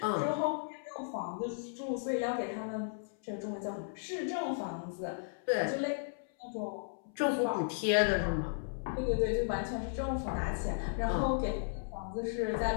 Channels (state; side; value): silent; right; 54 dB below the other